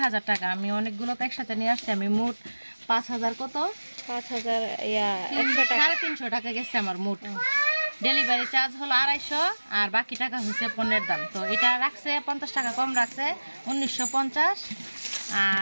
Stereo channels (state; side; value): inverted; both; correlation -1.00